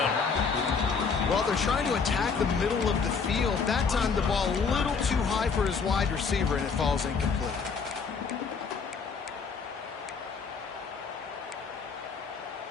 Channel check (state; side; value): quieter; right; 5.4 dB